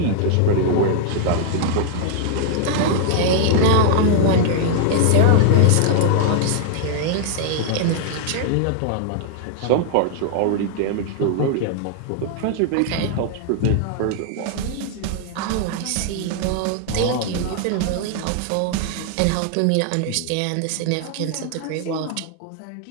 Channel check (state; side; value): different; both; correlation 0.00